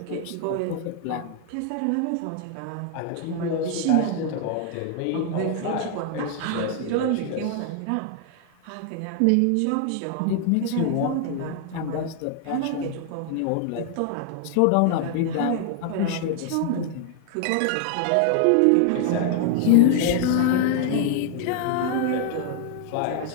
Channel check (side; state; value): both; different; correlation 0.00